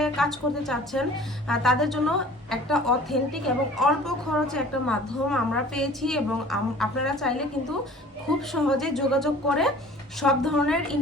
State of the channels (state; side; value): normal; both; correlation 0.47